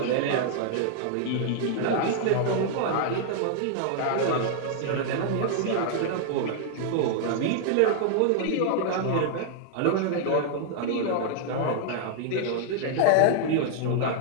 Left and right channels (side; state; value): both; different; correlation -0.01